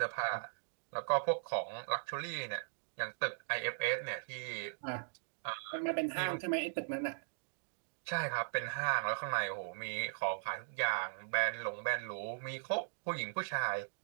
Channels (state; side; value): silent; left; digital silence